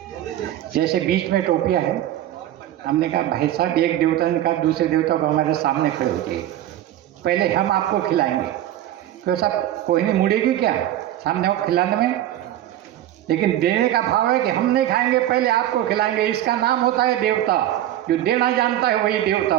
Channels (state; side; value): quieter; left; 12.7 dB